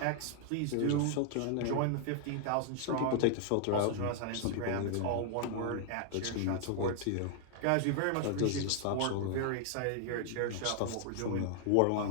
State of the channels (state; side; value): different; both; correlation 0.00